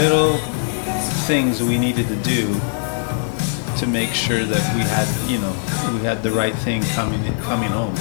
things that we needed to do to make sure that we had the right thing coming home,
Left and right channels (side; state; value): right; silent; digital silence